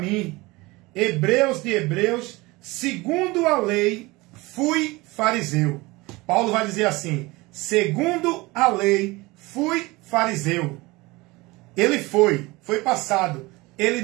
hebreus de hebreus, segundo a lei, fui fariseu. Paulo vai dizer assim, segundo a lei, fui fariseu. Ele foi passado, ele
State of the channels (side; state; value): left; quieter; 22.4 dB